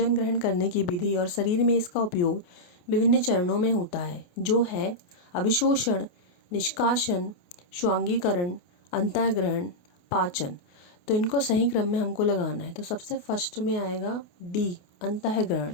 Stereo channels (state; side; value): late; right; 28 ms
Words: ग्रहण करने की विधि और शरीर में इसका उपयोग विभिन्न चरणों में होता है, जो है अभिशोषण, निष्कासन, स्वांगीकरण, अंतःग्रहण, पाचन। तो इनको सही क्रम में हमको लगाना है। तो सबसे फर्स्ट में आएगा डी,